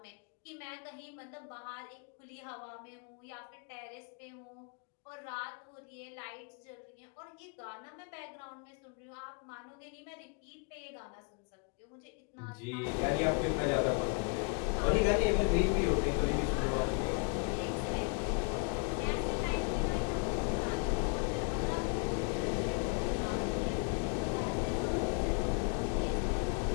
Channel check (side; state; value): right; quieter; 37.9 dB